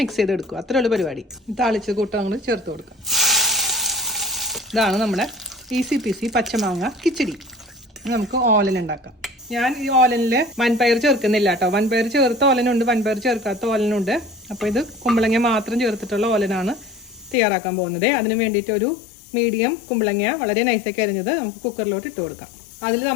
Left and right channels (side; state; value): right; drops out; at 17.4 s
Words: മിക്സ് ചെയ്തെടുക്കുക. അത്രയുള്ള പരിപാടി. താളിച്ച് കൂട്ടങ്ങൾ ചേർത്ത് കൊടുക്കുക. ഇതാണ് നമ്മുടെ ഈസി പീസി പച്ചമാങ്ങ കിച്ചടി. നമുക്ക് ഓലൻ ഉണ്ടാക്കാം. ഞാൻ ഈ ഓലനിൽ വൻപയർ ചേർക്കുന്നില്ല കേട്ടോ. വൻപയർ ചേർത്ത ഓലനുണ്ട്, വൻപയർ ചേർക്കാത്ത ഓലനുണ്ട്. അപ്പോൾ ഇത് കുമ്പളങ്ങ മാത്രം ചേർത്തിട്ടുള്ള ഓലനാണ് തയ്യാറാക്കാൻ പോകുന്നത്. അതിന് വേണ്ടിയിട്ട് ഒരു മീഡിയം കുമ്പളങ്ങ വളരെ നൈസാക്കി അരിഞ്ഞത് നമുക്ക് കുക്കറിലോട്ട് ഇട്ട് കൊടുക്കാം. അതിൽ